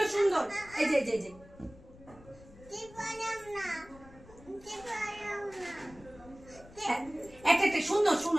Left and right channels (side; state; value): left; noise; rumble, 22 dB below the sound